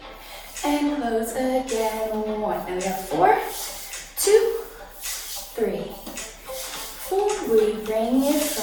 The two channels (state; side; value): identical; both; correlation 1.00